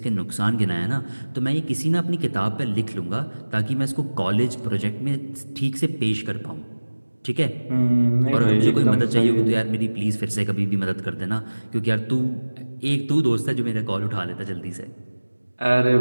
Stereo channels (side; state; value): both; inverted; correlation -1.00